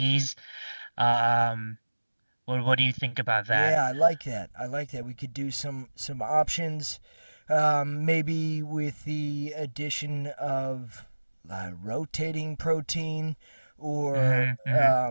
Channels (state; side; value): inverted; both; correlation -1.00